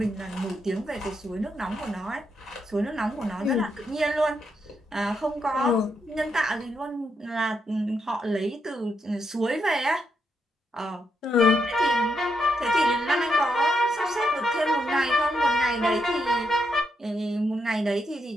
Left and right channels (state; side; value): normal; both; correlation 0.80